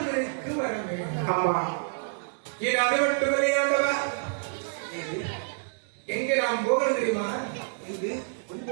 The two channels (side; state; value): left; silent; 59 dB below the other